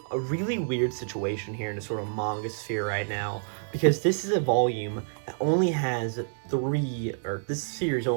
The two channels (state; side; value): silent; left; digital silence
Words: a really weird situation here in the sort of manga sphere right now, because this is a volume that only has 3, or this series